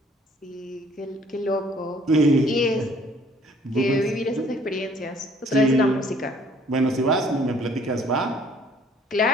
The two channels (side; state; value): both; normal; correlation 0.59